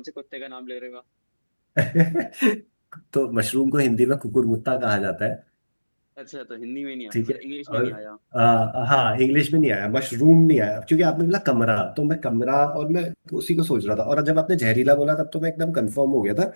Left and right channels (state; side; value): inverted; both; correlation -1.00